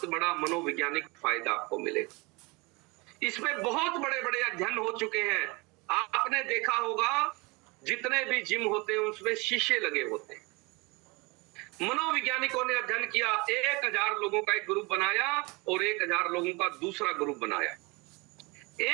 बड़ा मनोवैज्ञानिक फायदा आपको मिलेगा। इसमें बहुत बड़े बड़े अध्ययन हो चुके हैं। आपने देखा होगा जितने भी जिम होते हैं उसमें शीशे लगे होते हैं। मनोवैज्ञानिकों ने अध्ययन किया, 1000 लोगों का एक ग्रुप बनाया और 1000 लोगों का दूसरा ग्रुप बनाया।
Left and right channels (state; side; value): quieter; left; 26.4 dB